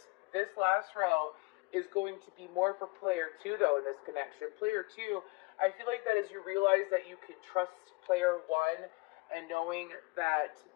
this last row is going to be more for player 2, though, in this connection. Player 2, I feel like that as you realize that you can trust player 1, and knowing that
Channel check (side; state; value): right; quieter; 25.8 dB